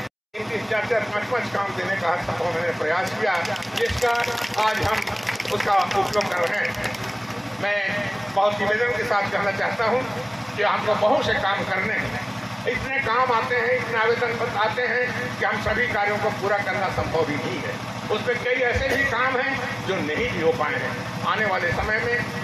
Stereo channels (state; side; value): identical; both; correlation 1.00